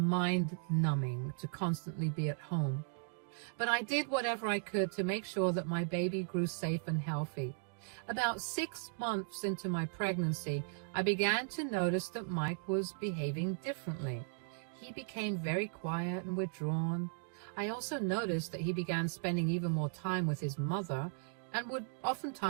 to constantly be at home. But I did whatever I could to make sure that my baby grew safe and healthy. About 6 months into my pregnancy, I began to notice that Mike was behaving differently. He became very quiet and withdrawn. I also noticed that he began spending even more time with his mother and would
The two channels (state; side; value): silent; left; digital silence